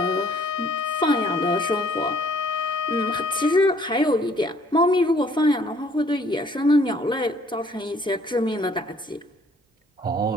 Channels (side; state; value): both; normal; correlation 0.60